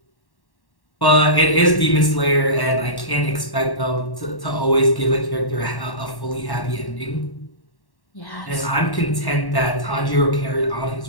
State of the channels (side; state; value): right; late; 1.1 ms